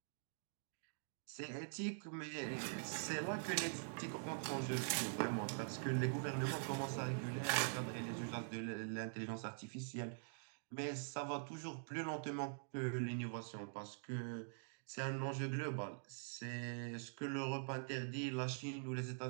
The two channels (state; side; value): silent; left; digital silence